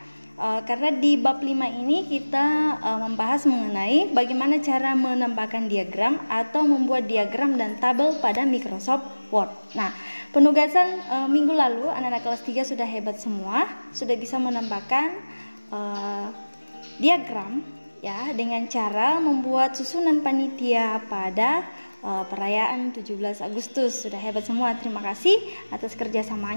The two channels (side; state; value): both; inverted; correlation -1.00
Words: Karena di bab 5 ini kita membahas mengenai bagaimana cara menambahkan diagram atau membuat diagram dan tabel pada Microsoft Word. Nah, penugasan minggu lalu anak-anak kelas 3 sudah hebat semua, sudah bisa menambahkan diagram ya dengan cara membuat susunan panitia pada perayaan 17 Agustus. Sudah hebat semua. Terima kasih atas